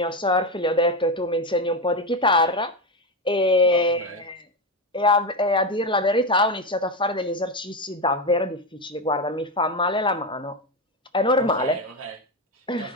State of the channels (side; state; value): both; normal; correlation 0.13